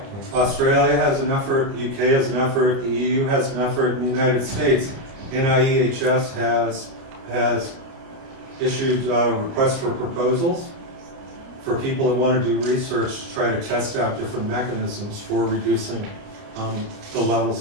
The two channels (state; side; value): late; left; 30 ms